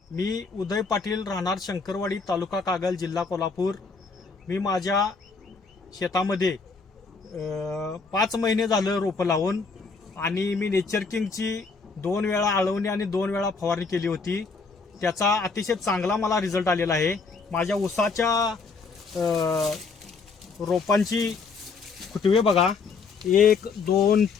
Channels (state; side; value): quieter; right; 4.6 dB